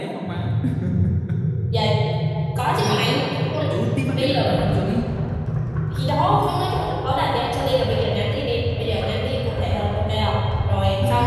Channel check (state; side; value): identical; both; correlation 1.00